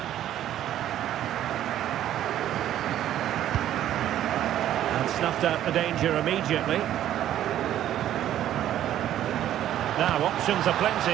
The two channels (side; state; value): left; quieter; 11.9 dB